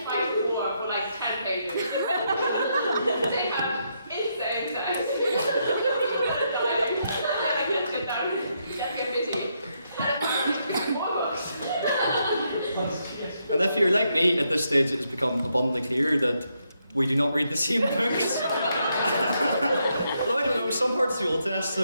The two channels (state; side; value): inverted; both; correlation -0.78